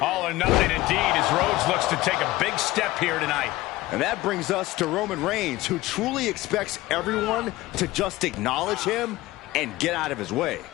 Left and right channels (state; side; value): quieter; right; 18.0 dB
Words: All or nothing indeed as Rhodes looks to take a big step here tonight. And that brings us to Roman Reigns, who truly expects everyone to just acknowledge him and get out of his way.